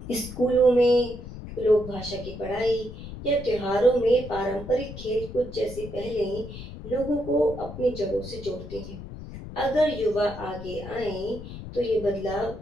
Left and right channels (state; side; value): noise; left; rumble, 11 dB below the sound